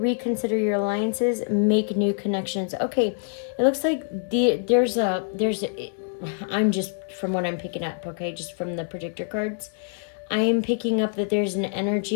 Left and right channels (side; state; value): right; silent; 62 dB below the other